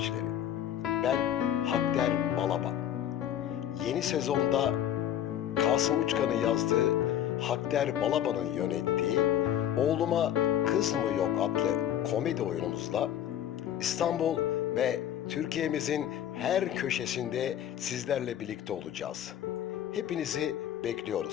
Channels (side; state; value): right; quieter; 10.8 dB